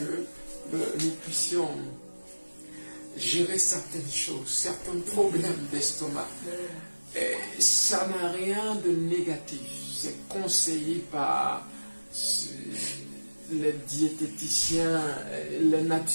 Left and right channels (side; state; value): both; inverted; correlation -1.00